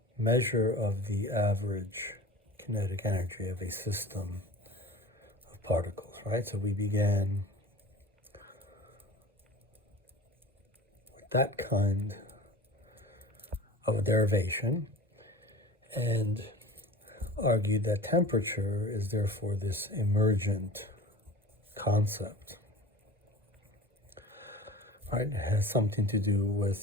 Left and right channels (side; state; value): both; normal; correlation 0.38